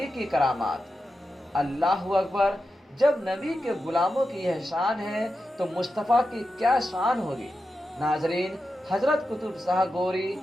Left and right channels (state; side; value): normal; both; correlation 0.90